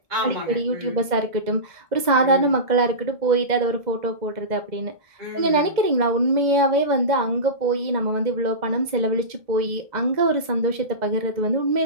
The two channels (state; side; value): late; left; 2.0 ms